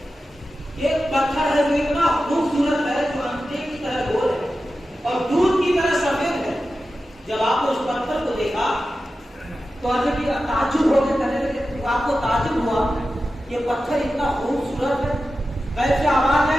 ایک پتھر ہے جو اتنا خوبصورت ہے جو انڈے کی طرح گول ہے اور دودھ کی طرح سفید ہے. جب آپ نے اس پتھر کو دیکھا تو حضرت تعجب ہو کے کہنے لگے، آپ کو تعجب ہوا یہ پتھر اتنا خوبصورت ہے، کیسے آواز ہے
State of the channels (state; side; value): normal; both; correlation 0.93